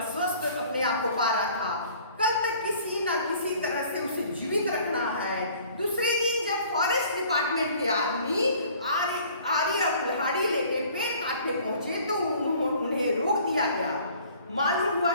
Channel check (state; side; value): inverted; both; correlation -0.53